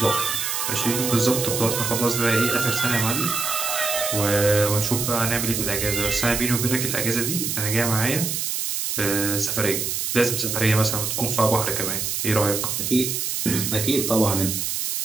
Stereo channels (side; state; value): right; noise; hiss, 1 dB below the sound